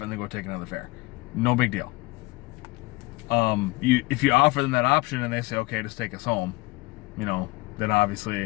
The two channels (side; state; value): right; quieter; 23.7 dB